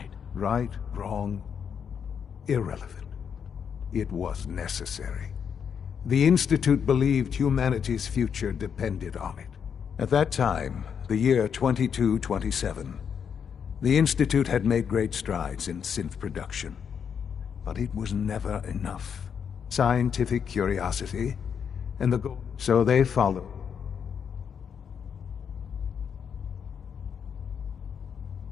Right, wrong, irrelevant. It was necessary. The Institute believed humanity's future depended on it. At that time, the year 2227, the Institute had made great strides in synth production. But it was never enough. Scientific curiosity, and the goal. So they followed.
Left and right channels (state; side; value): quieter; right; 7.3 dB